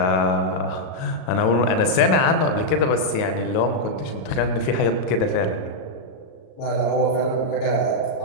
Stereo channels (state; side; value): late; right; 38 ms